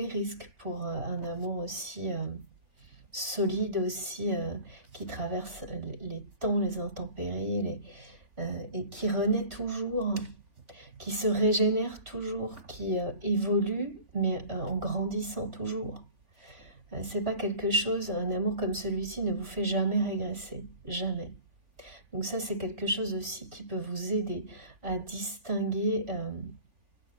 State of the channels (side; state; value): left; late; 3.5 ms